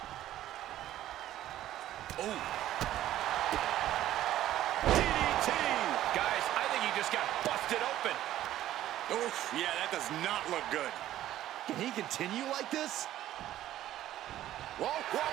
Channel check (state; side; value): quieter; left; 13.2 dB